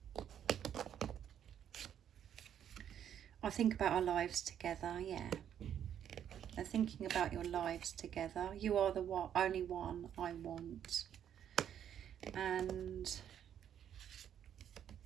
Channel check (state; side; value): quieter; left; 9.6 dB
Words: I think about our lives together, yeah. They're thinking about your lives together. You are the only one I want. And